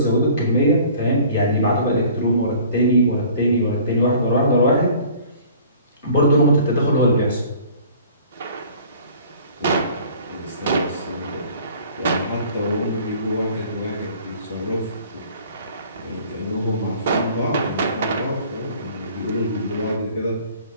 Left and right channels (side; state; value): both; inverted; correlation -0.50